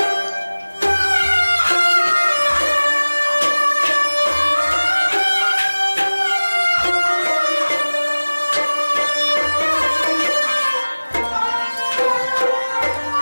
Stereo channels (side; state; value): both; inverted; correlation -1.00